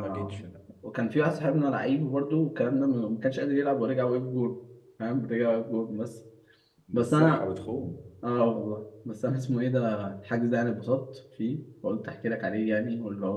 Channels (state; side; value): identical; both; correlation 1.00